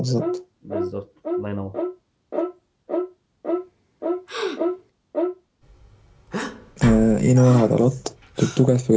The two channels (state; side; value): identical; both; correlation 1.00